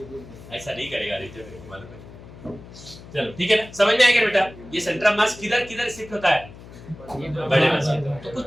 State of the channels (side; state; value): left; noise; hum, 17 dB below the sound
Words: ऐसा नहीं करेगा आदित्य, मेरे को मालूम है। चलो ठीक है ना, समझ में आएगा बेटा? ये सेंटर ऑफ मास किधर शिफ्ट होता है? बड़े मास। तो कुछ